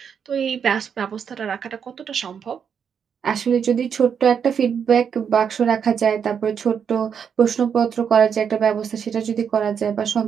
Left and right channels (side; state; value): left; quieter; 7.3 dB